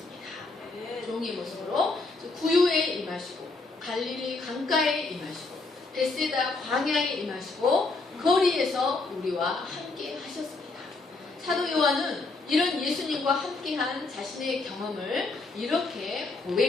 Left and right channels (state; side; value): quieter; right; 3.5 dB